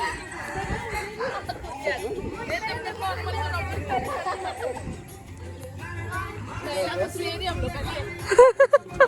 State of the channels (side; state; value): both; identical; correlation 1.00